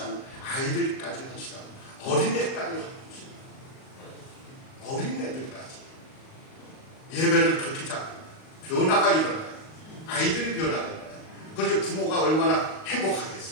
아이들까지 헌신하는, 어린애까지 헌신하는, 어린애들까지 예배를 그렇게 잡고 변화가 일어나요. 아이들이 변화가 일어나요. 그래서 부모가 얼마나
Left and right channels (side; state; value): right; late; 38 ms